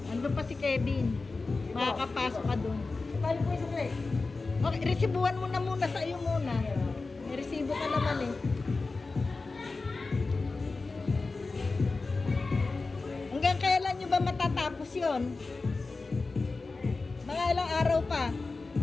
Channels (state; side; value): quieter; right; 3.8 dB